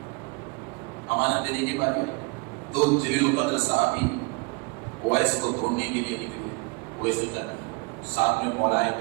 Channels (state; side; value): quieter; left; 29.4 dB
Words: امانت دینے کی باری آئی، تو جلیل القدر صحابی اویس کو ڈھونڈنے کے لیے نکلے، اویس قرنی ساتھ میں مولا